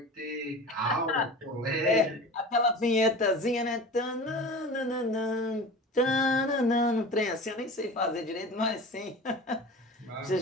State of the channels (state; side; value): normal; both; correlation 0.35